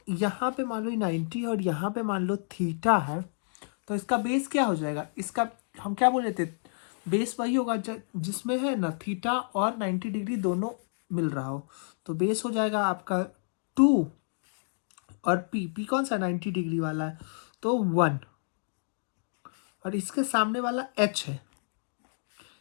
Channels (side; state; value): right; silent; digital silence